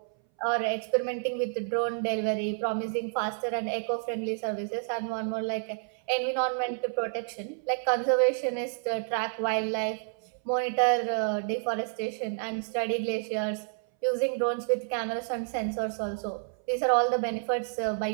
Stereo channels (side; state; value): left; silent; 58 dB below the other